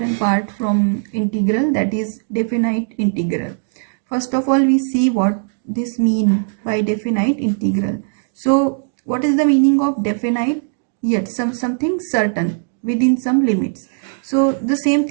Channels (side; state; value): left; silent; digital silence